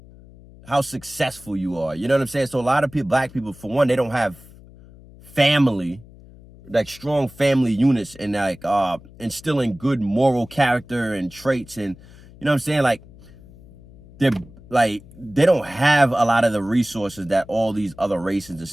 successful you are. You know what I'm saying? So a lot of people, black people, for one, they don't have family, like strong family units, and like instilling good moral character and traits. And you know what I'm saying? Like, they don't have a lot of the resources that all these other races and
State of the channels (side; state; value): left; noise; hum, 22 dB below the sound